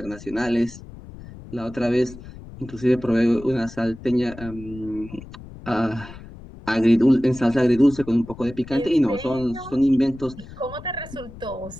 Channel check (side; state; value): left; noise; rumble, 16 dB below the sound